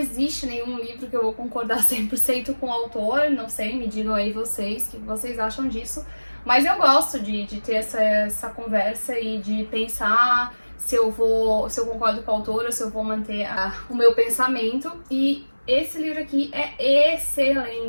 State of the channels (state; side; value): inverted; both; correlation -1.00